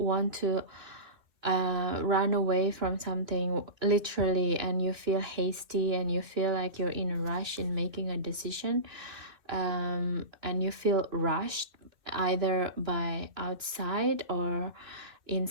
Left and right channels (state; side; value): late; left; 2.6 ms